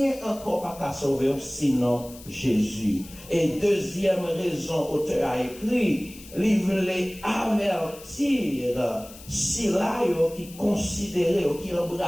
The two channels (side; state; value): left; noise; hiss, 18 dB below the sound